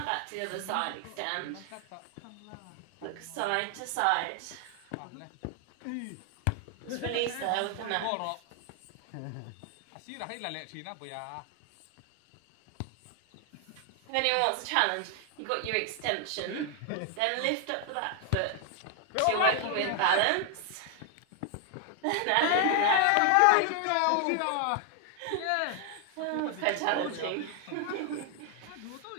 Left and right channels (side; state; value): both; different; correlation 0.00